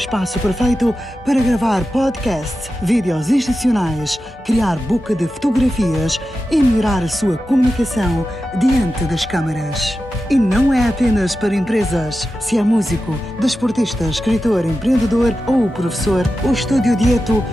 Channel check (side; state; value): both; normal; correlation 0.92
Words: perfeito para gravar podcasts, vídeos institucionais, criar book de fotografias e melhorar a sua comunicação diante das câmaras. E não é apenas para empresas. Se é músico, desportista, escritor, empreendedor ou professor, o Estúdio Dieto